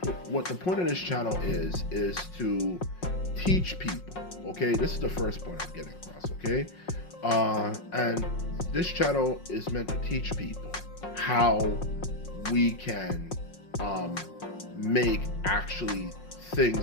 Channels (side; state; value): right; late; 5.5 ms